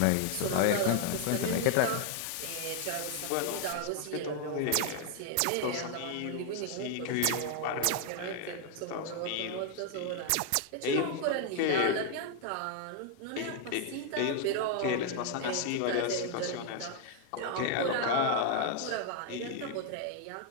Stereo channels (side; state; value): both; different; correlation 0.00